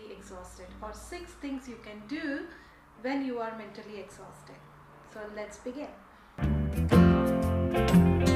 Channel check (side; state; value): both; identical; correlation 1.00